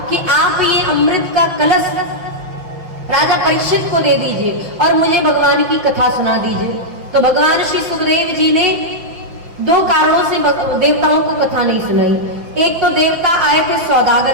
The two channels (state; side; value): late; left; 5.8 ms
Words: कि आप ये अमृत का कलश राजा परीक्षित को दे दीजिए और मुझे भगवान की कथा सुना दीजिए। तो भगवान श्री सुखदेव जी ने दो कारणों से देवताओं को कथा नहीं सुनाई। एक तो देवता आए थे